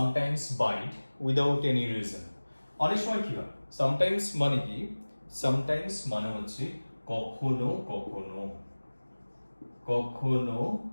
bite without any reason. অনেক সময় কি হয়, সামটাইমস মানে কি, সামটাইমস মানে হচ্ছে কখনো কখনো, কখনো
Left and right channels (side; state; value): both; inverted; correlation -1.00